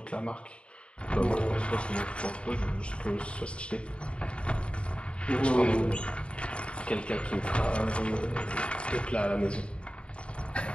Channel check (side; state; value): right; late; 0.057 ms